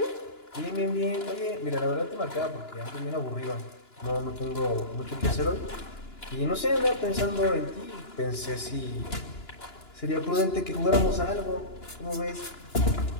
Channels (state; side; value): late; right; 2.9 ms